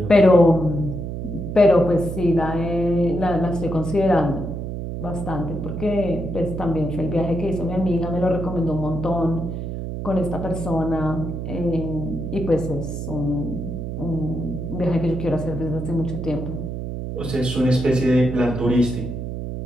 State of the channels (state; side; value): noise; right; hum, 5 dB below the sound